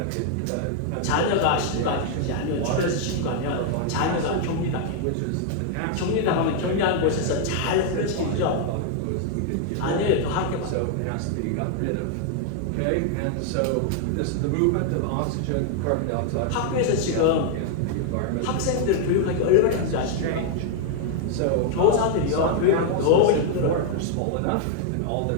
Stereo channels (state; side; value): different; both; correlation 0.00